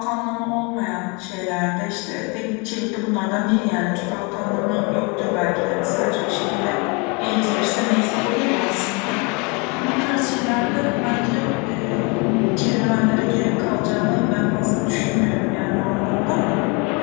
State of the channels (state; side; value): quieter; right; 30.8 dB